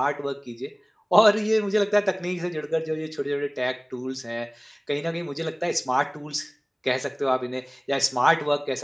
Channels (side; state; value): both; identical; correlation 1.00